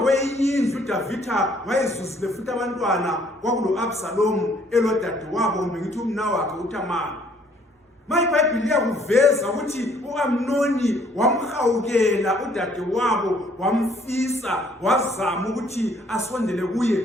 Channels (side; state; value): both; normal; correlation 0.62